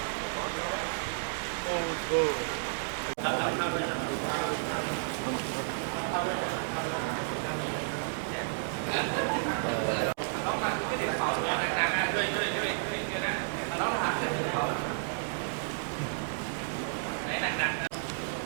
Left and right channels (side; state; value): left; silent; digital silence